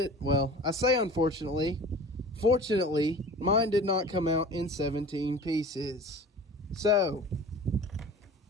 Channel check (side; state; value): both; normal; correlation 0.40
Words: say unfortunately. Fortunately, mine did not come out in 17 pieces. So,